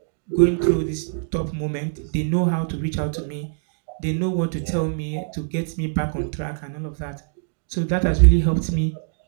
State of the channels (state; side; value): silent; left; digital silence